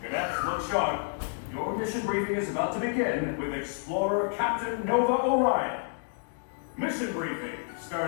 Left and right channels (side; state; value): right; silent; 58 dB below the other